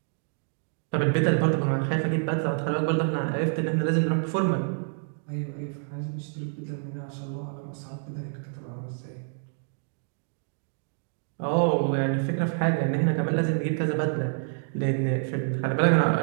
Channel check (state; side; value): silent; left; 60 dB below the other